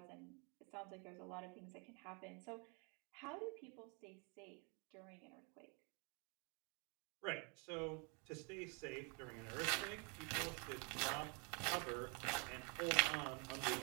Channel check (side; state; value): left; quieter; 34.4 dB